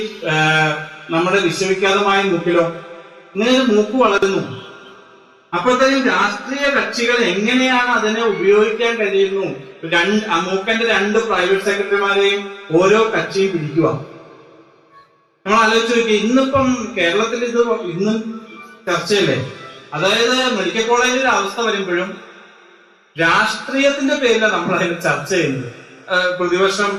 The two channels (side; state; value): both; identical; correlation 1.00